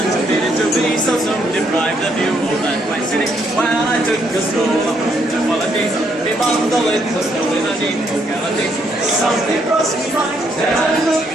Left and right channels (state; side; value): normal; both; correlation 0.73